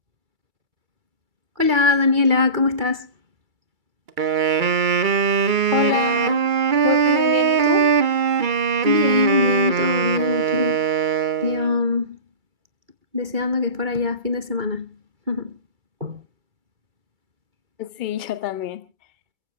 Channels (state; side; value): late; left; 2.3 ms